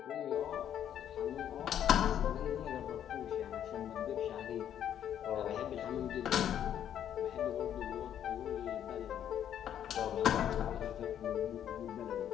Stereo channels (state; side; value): quieter; right; 10.0 dB